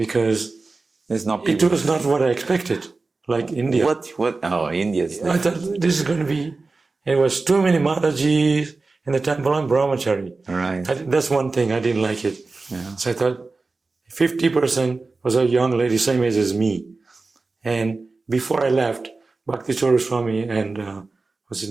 it was not what I expected, like India. What? Oh, India. I thought this is going to be, it was too many Matajis in the temple on Brahmachari. Right. That's one thing, I didn't like it. Yeah. So I thought 50% was a young lady, same age as me. And before I left, Bhakti Swami and, what's his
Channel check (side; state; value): left; quieter; 3.8 dB